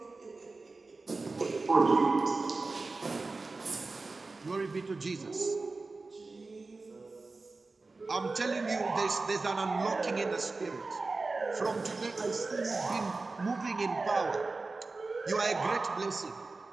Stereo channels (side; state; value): left; quieter; 3.7 dB